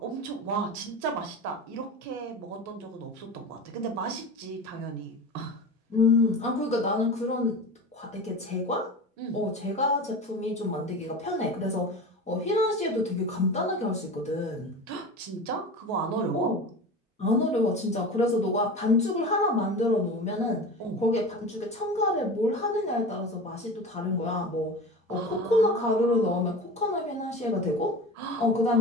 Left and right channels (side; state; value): both; normal; correlation 0.31